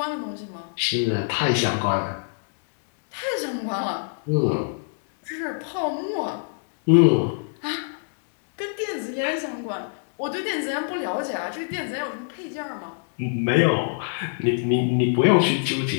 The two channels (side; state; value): right; silent; digital silence